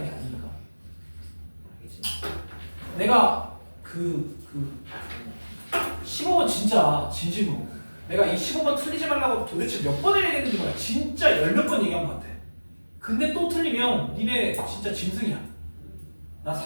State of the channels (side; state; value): both; inverted; correlation -1.00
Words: 게 아니니까. 알겠지? 내가 15번 진짜 진심으로 내가 이 15번 틀리지 말라고 도대체 몇 번을 얘기했는지 몰라. 진짜 10몇 번 얘기한 것 같아. 근데 또 틀리면 니네 진짜 짐승이야. 나